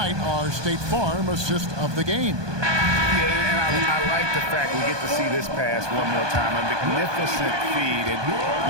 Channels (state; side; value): late; left; 1.2 ms